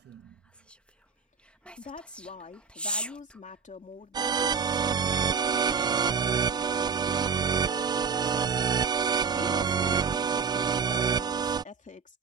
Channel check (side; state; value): left; quieter; 5.9 dB